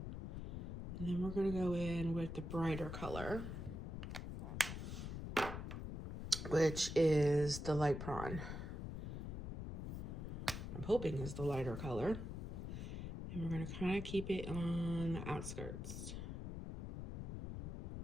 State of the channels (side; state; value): left; noise; rumble, 5 dB below the sound